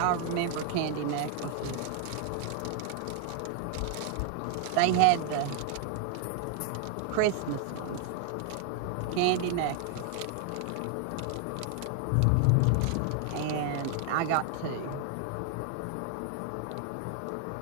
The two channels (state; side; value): different; both; correlation 0.00